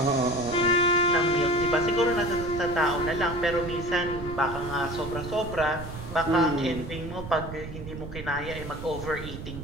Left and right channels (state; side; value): noise; right; rumble, 10 dB below the sound